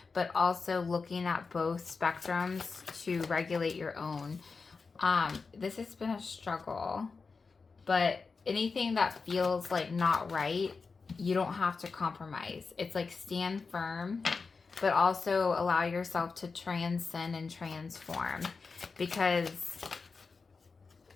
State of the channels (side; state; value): right; quieter; 4.6 dB